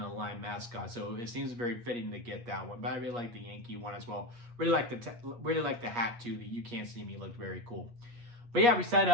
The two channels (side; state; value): left; late; 8.4 ms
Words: a Lime mascot, so it seems very fitting to get that one. But I really like the Yankee one as well. Really like the hat too. The "You Can't See Me" looked very cool. But yeah, we set